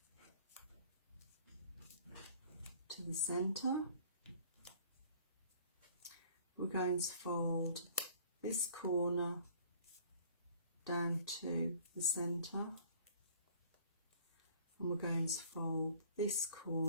to the centre. We're going to fold this corner down to the centre, and we're going to fold this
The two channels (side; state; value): both; inverted; correlation -0.54